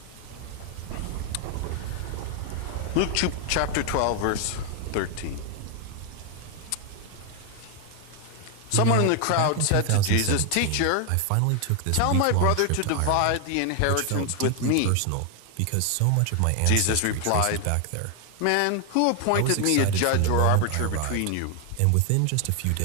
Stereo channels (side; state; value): both; different; correlation 0.01